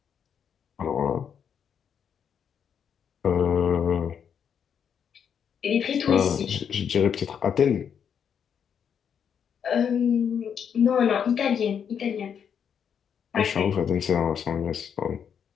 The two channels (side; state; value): right; quieter; 7.8 dB